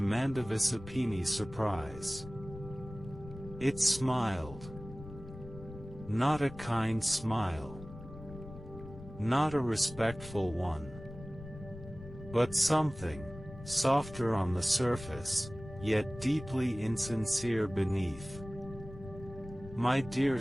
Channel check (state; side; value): noise; left; rumble, 14 dB below the sound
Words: surprise, it smiled. Not a kind smile. Not a respectful one. But something, softer on the surface, yet deeply insincere beneath. My dear